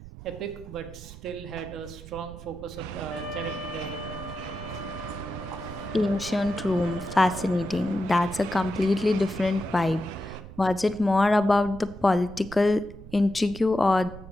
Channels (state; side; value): noise; right; rumble, 15 dB below the sound